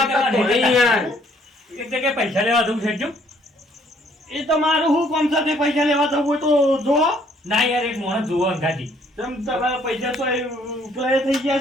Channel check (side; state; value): both; normal; correlation 0.64